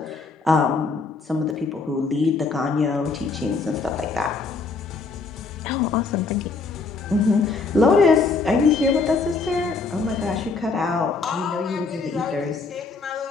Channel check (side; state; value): right; quieter; 4.2 dB